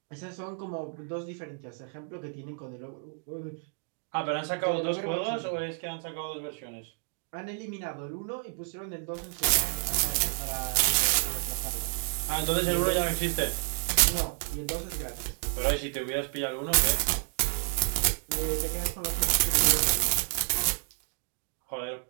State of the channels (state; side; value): silent; left; 58 dB below the other